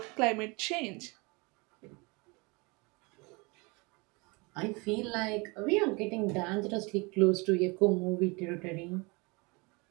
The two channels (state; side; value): quieter; left; 27.6 dB